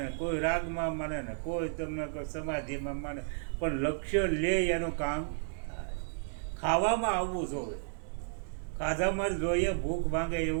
કોઈ રાગમાં માને ને કોઈ તમને સમાધિમાં માને, પણ લક્ષ્ય લે એનું કામ થાય. ખાવામાં આવવું જોઈએ, ખાધામાં જોઈએ ભૂખ ભાંગે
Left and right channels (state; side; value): silent; left; 56 dB below the other